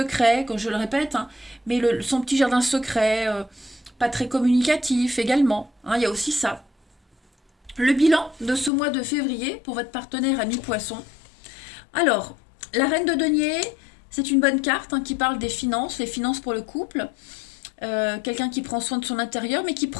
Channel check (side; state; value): right; drops out; at 8.7 s